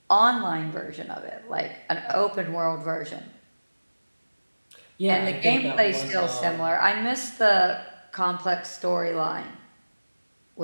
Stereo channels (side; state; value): both; inverted; correlation -1.00